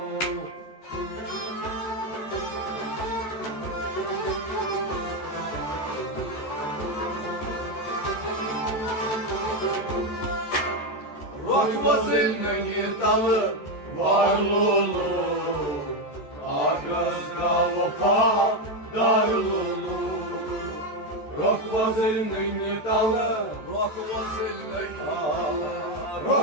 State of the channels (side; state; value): right; late; 14 ms